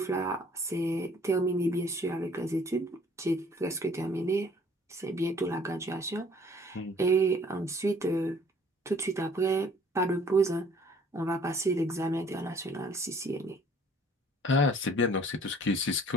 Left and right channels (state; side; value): normal; both; correlation 0.56